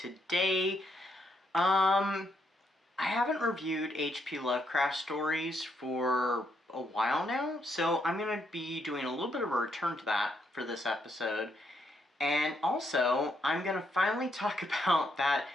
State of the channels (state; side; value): normal; both; correlation 0.76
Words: I haven't reviewed H.P. Lovecraft stories for a while now, so I'm going to be doing a little bit of a return to that for this episode. And also, I'm going to finally talk about that